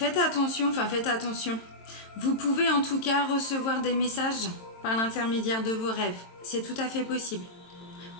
attention. Vous pouvez en tout cas recevoir des messages par l'intermédiaire de vos rêves. C'est tout à fait possible.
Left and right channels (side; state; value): right; late; 22 ms